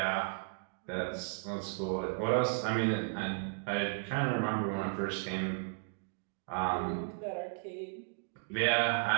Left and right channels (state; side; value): silent; left; digital silence